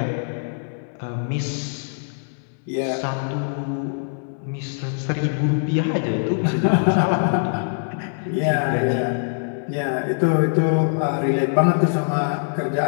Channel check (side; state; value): right; silent; digital silence